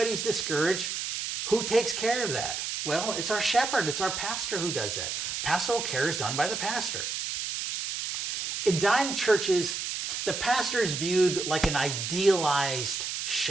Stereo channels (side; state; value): right; noise; hiss, 3 dB below the sound